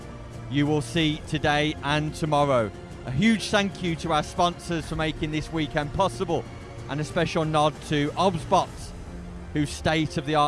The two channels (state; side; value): identical; both; correlation 1.00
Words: you will see today and tomorrow. A huge thank you to our sponsors for making this weekend possible, and a special nod to ObsBot, whose